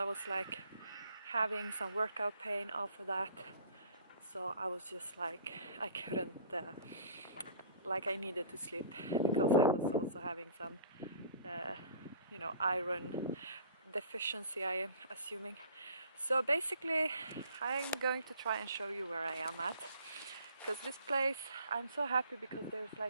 was like having some workout pain after that, so I was just like I couldn't like I needed to sleep because I was also having some iron deficiency, I am assuming. So basically I'm going to try and show you where I am at, because this place, I'm so happy because there's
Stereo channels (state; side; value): inverted; both; correlation -0.50